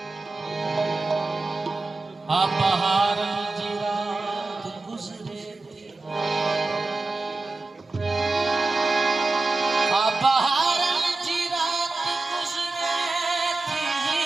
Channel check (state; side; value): quieter; left; 3.3 dB